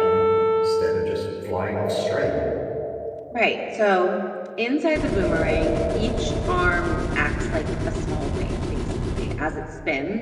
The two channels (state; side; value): identical; both; correlation 1.00